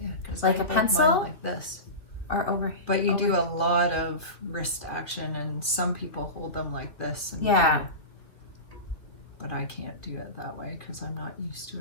like a pencil? Like this. Or over. But you do a lot of wrist action, and some people hold them like this. And yeah. But I can't do it that way because I'm not used to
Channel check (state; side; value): late; right; 2.7 ms